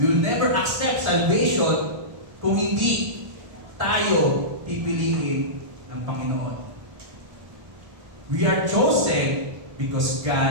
We will never accept salvation kung hindi tayo pipiliin ng Panginoon. We are chosen because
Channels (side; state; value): left; late; 1.8 ms